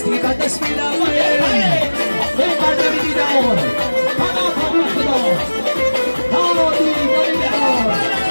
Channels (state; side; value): inverted; both; correlation -1.00